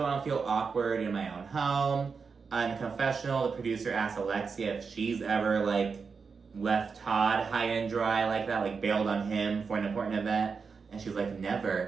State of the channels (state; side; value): quieter; left; 5.3 dB